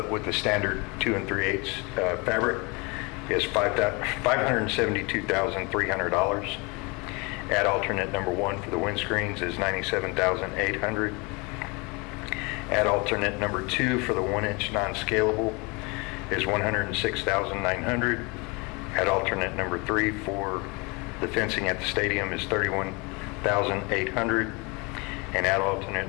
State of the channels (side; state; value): right; quieter; 28.5 dB